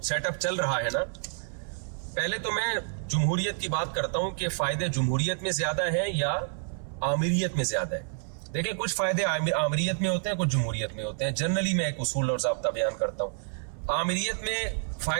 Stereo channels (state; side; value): silent; left; 59 dB below the other